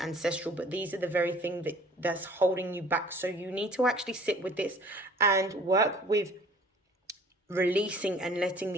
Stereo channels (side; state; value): both; normal; correlation 0.52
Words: but these are the very thing that's holding you back. So you need to actually sit with this and work with releasing and letting